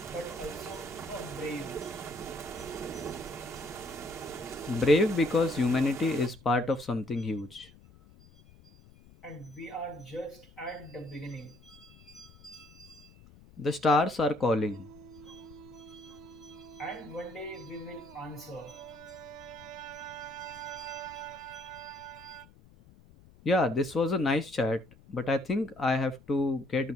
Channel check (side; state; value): left; noise; rumble, 23 dB below the sound